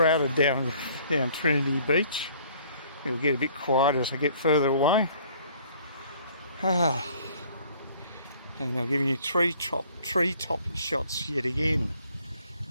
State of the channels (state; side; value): inverted; both; correlation -0.57